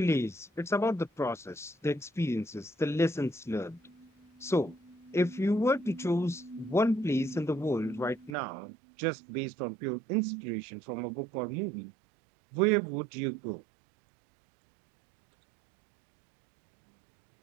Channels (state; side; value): drops out; left; at 8.3 s